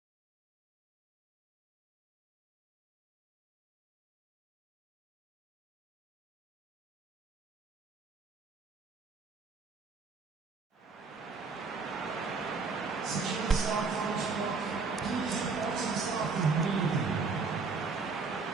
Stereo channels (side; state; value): left; quieter; 4.6 dB